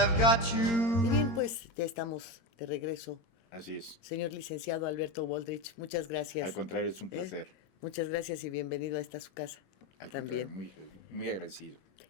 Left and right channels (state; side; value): late; right; 22 ms